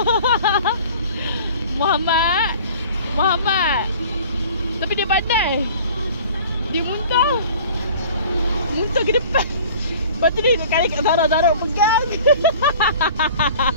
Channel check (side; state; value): both; inverted; correlation -0.46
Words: Muhammad. Tapi dia pandai. Dia muntah. Muntah ke depan. Lepas tu dia kali kat Zara pegang.